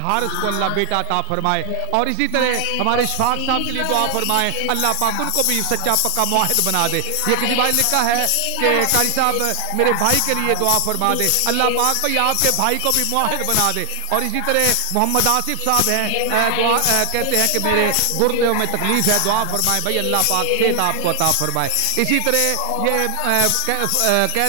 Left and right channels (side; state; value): both; different; correlation 0.00